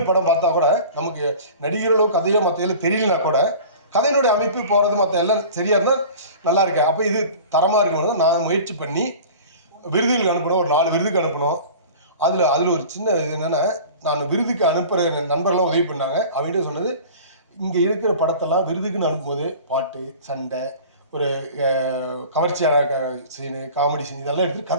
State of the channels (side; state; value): both; inverted; correlation -0.40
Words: படம் பார்த்தா கூட நமக்கு நடிகர்களோ கதையோ மற்ற தெரியலனா கூட கதையினுடைய அமைப்பு போகிறது மற்ற எல்லாம் சரியாக இருந்தால் நல்லா இருக்கேன். அப்போ இது தரமாக இருக்கணும். நான் முயற்சி பண்ணி விருதுகளுக்கு அனுப்பணும். ஒரு 4 விருதுக்கு அனுப்பணும். அதில் ஒரு சின்ன இது என்னென்னா, நான் விருதுக்கு அனுப்புகிற நண்பர்கள்லாம் உதவி பண்ணாங்க. அவங்ககிட்ட சொன்னது, இங்கே இருக்கிற படத்தெல்லாம் விருதுக்குன்னு அனுப்பும்போது பாட்டு, சண்டை, ஒரு கவர்ச்சியான சீனு, காமெடி சீன் இதெல்லாம் எடுத்து